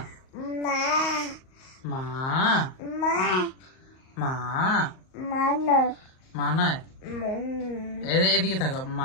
মা, মা, মা নয়, এদিকে থাকো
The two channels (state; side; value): late; right; 38 ms